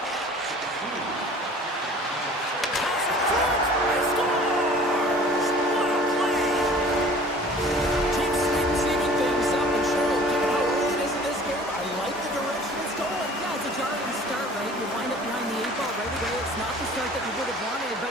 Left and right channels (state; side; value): normal; both; correlation 0.48